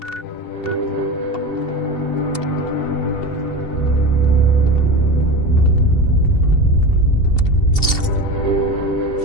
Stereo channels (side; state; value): right; late; 2.7 ms